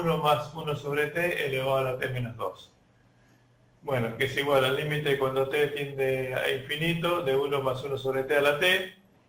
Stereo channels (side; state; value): both; identical; correlation 1.00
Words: más 1 sobre t elevado a la t menos 2. Bueno, que es igual al límite cuando t tiende a infinito de 1 más 1 sobre t a la t